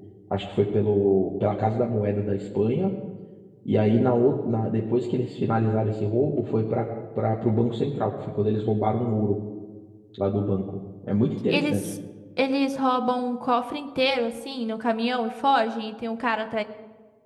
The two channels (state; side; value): identical; both; correlation 1.00